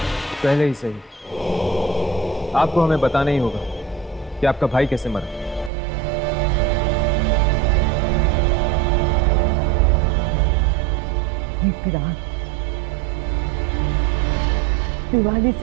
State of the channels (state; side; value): drops out; left; at 5.7 s